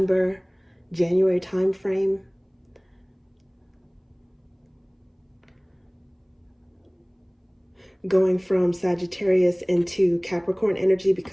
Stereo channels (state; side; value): identical; both; correlation 1.00